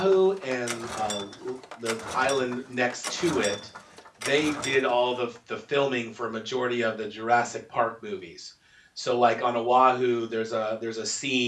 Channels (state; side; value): identical; both; correlation 1.00